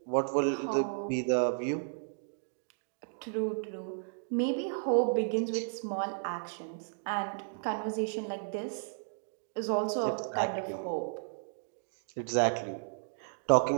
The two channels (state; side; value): silent; left; digital silence